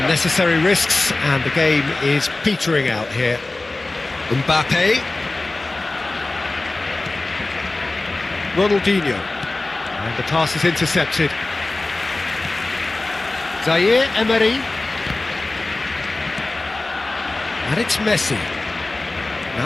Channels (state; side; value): quieter; right; 3.0 dB